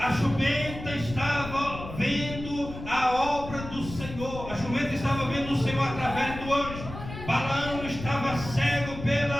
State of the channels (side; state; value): left; noise; rumble, 10 dB below the sound